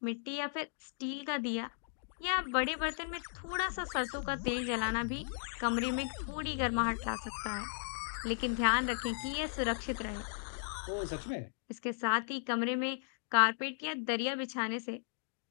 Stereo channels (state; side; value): silent; right; digital silence